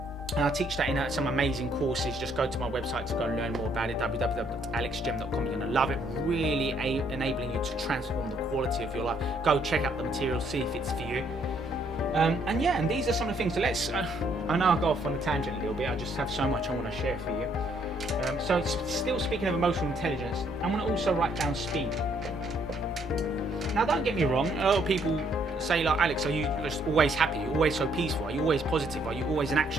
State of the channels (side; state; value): both; normal; correlation 0.69